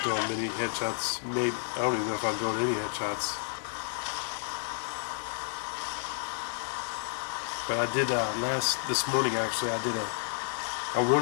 doing many headshots. Maybe I don't even know if I'm doing any headshots. But I did this morning actually. I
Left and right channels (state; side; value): silent; right; 57 dB below the other